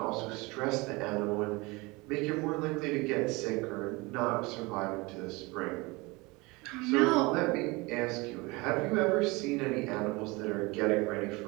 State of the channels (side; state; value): left; quieter; 24.4 dB